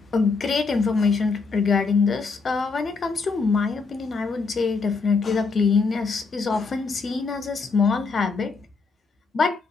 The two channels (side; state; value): right; quieter; 4.5 dB